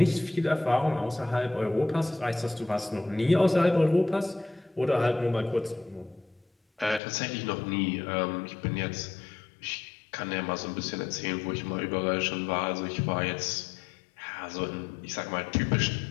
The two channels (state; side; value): drops out; right; at 7.0 s